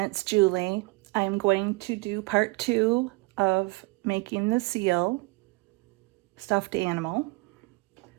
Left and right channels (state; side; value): quieter; left; 25.7 dB